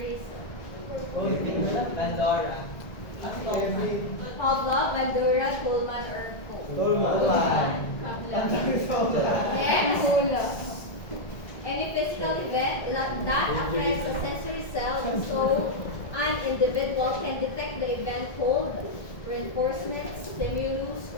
Oh, hindi mo na. Pandora. Pavlov, Bandura, Kuhlman, or Tolman. Next, any physical event that affects a sensory cell so an individual can detect the event called reinforcement, stimulus,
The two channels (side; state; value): right; late; 1.7 ms